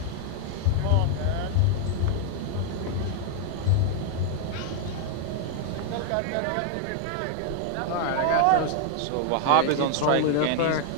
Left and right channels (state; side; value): different; both; correlation 0.00